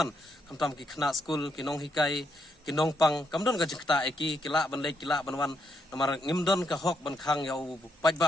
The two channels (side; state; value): both; normal; correlation 0.78